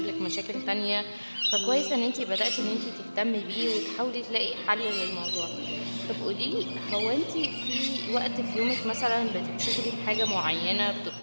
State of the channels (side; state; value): both; inverted; correlation -1.00